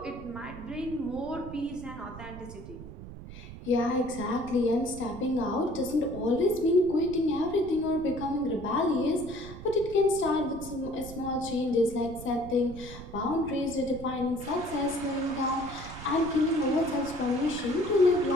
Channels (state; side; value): noise; right; rumble, 13 dB below the sound